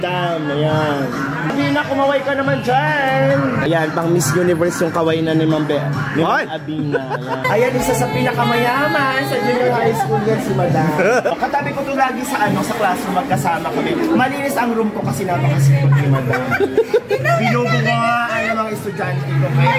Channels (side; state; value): both; identical; correlation 1.00